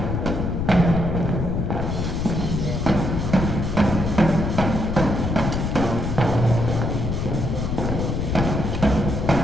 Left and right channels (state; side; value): noise; left; rumble, 1 dB below the sound